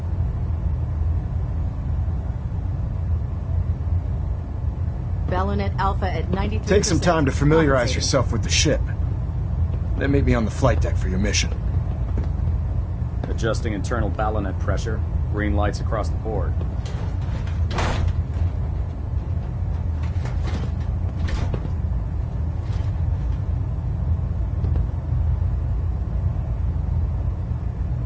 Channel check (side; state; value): both; identical; correlation 1.00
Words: Balonet Alpha at 93%. Take some time to familiarize yourself with the ship. Then meet me on the flight deck for your mission. Adjusting internal balonet pressure. Green lights across the board.